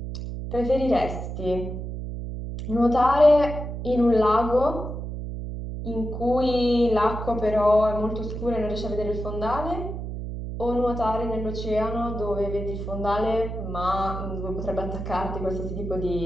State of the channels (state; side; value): noise; right; hum, 6 dB below the sound